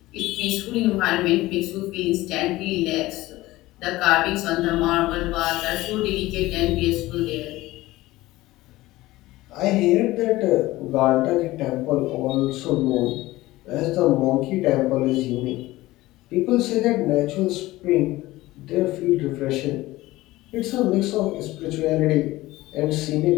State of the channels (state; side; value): quieter; right; 18.1 dB